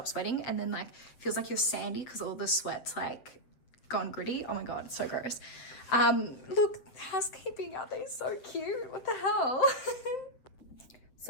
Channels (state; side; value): late; right; 8.1 ms